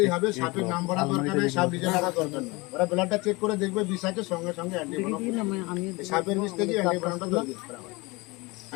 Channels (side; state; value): right; quieter; 24.5 dB